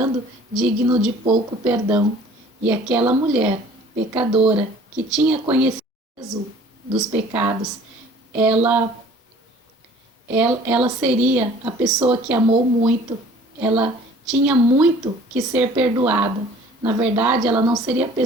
digno de pouco perdão. E aquela mulher pecadora que tinha conhecido dos pecados, ela seria a pessoa que amou muito, ela tinha muito que ser perdoada. Na verdade, ela não seria a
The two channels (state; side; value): normal; both; correlation 0.51